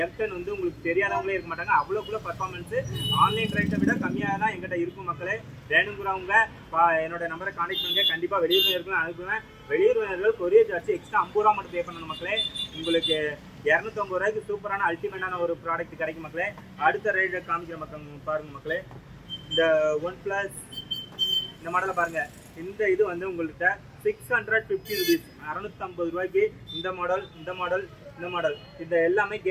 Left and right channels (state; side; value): identical; both; correlation 1.00